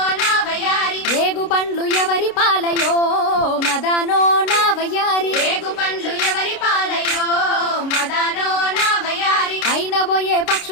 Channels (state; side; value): late; right; 29 ms